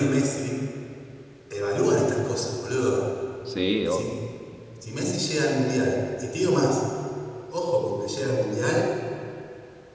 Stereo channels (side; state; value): both; identical; correlation 1.00